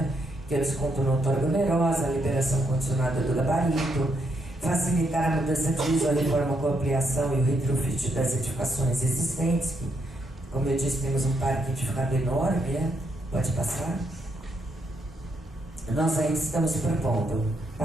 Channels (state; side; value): normal; both; correlation 0.77